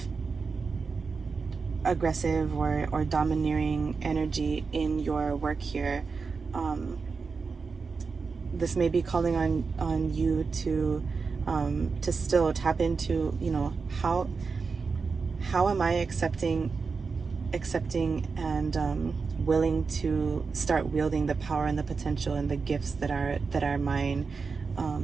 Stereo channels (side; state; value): left; quieter; 4.8 dB